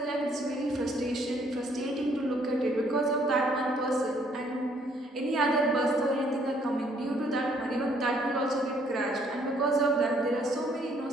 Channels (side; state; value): both; normal; correlation 0.65